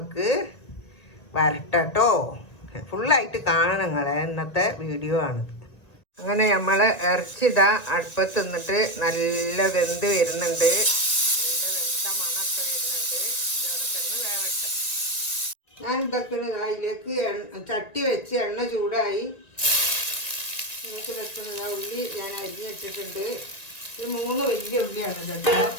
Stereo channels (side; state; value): right; late; 1.9 ms